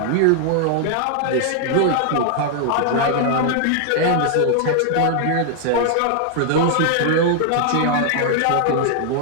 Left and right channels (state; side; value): different; both; correlation 0.00